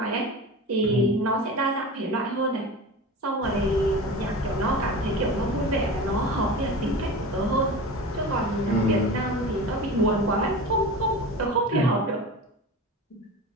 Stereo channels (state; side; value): normal; both; correlation 0.31